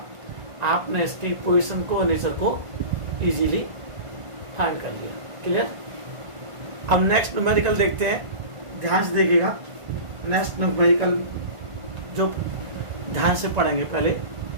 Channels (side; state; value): left; late; 1.5 ms